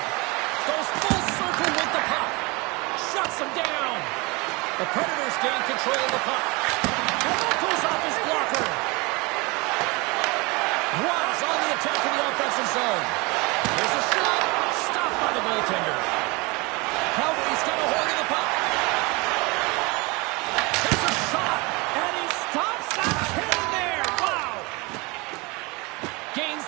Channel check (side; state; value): left; quieter; 26.2 dB